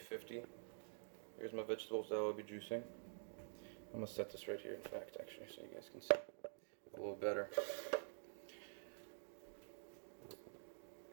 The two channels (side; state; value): left; silent; digital silence